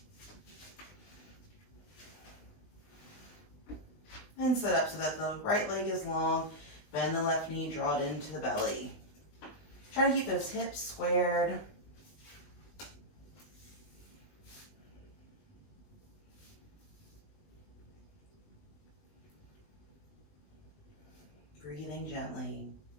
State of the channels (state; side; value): late; right; 20 ms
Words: And set up so that the right leg is long, bend the left knee, draw it into the belly. Try to keep those hips squared. Breathing gently.